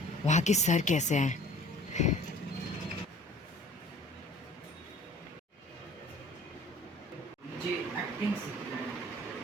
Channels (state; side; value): normal; both; correlation 0.49